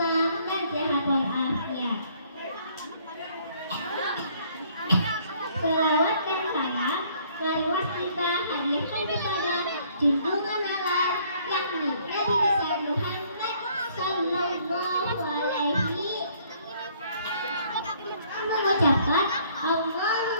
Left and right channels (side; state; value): both; inverted; correlation -0.62